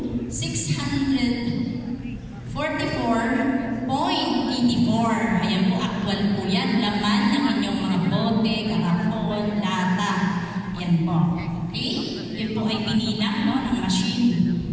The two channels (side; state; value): both; identical; correlation 1.00